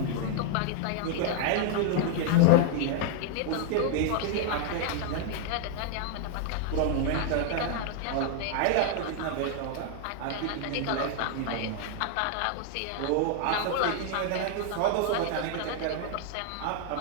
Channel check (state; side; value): different; both; correlation 0.00